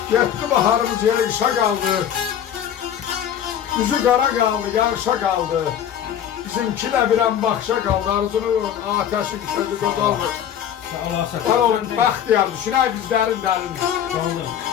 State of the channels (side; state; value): right; quieter; 9.6 dB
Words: Getdi baharımız yağışa qaldı. Yüzü qara qaldı, yağışa qaldı. Bizimki də birən baxışa qaldı. Arzunun ateşin közü qocalmır. Var olun, bəxtiyar, düşünək biz dərin.